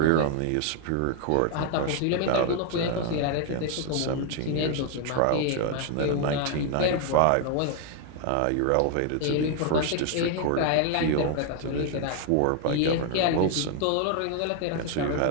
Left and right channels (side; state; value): both; different; correlation 0.00